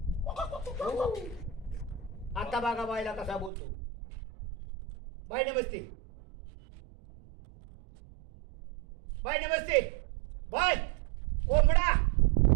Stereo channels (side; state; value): left; drops out; at 3.5 s